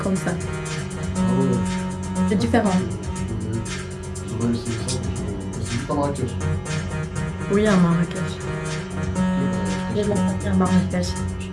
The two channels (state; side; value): identical; both; correlation 1.00